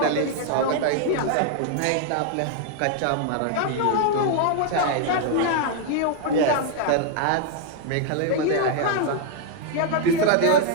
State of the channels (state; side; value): different; both; correlation 0.00